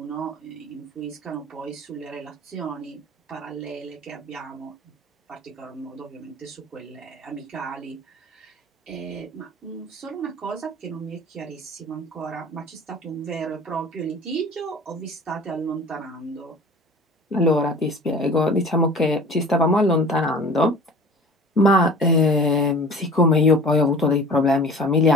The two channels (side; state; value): both; normal; correlation 0.43